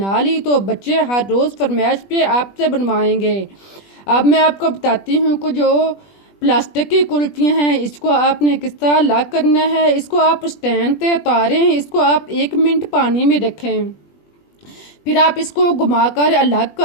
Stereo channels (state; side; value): late; right; 20 ms